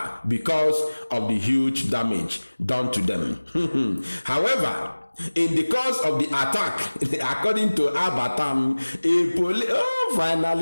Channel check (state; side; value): inverted; both; correlation -1.00